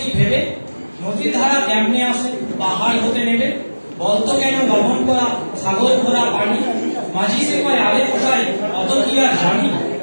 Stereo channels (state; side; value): inverted; both; correlation -1.00